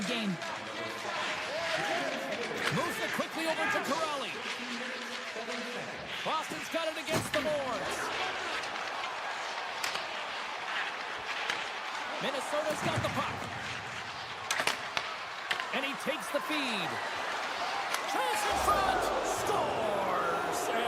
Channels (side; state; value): both; identical; correlation 1.00